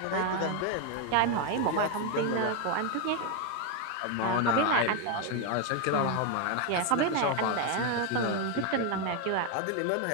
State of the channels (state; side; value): different; both; correlation 0.01